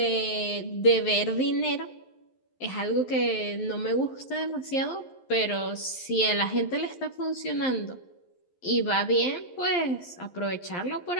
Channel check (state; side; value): late; right; 11 ms